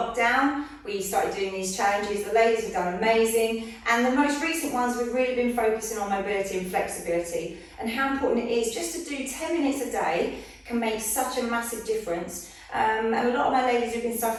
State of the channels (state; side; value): identical; both; correlation 1.00